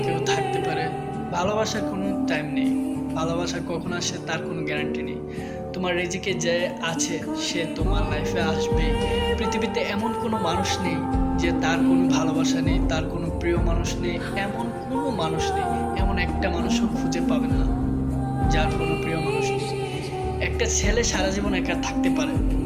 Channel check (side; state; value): both; identical; correlation 1.00